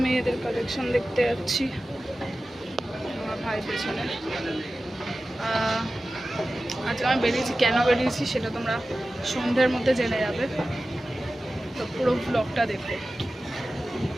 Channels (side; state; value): both; normal; correlation 0.95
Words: মেয়েদের কালেকশন দেখতে যাচ্ছি, আমার ভাই পেছনে। আজকে আমি বেরিয়েছি, কেন বেরিয়েছি সেটা তোমরা সন্ধ্যের মধ্যে জেনে যাবে, তো পুরো ব্লগটা দেখো।